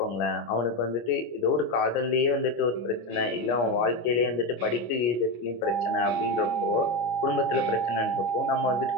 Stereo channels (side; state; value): right; late; 25 ms